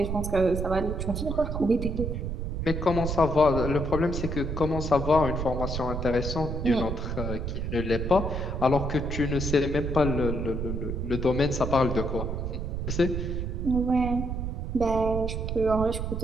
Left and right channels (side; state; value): right; noise; rumble, 3 dB below the sound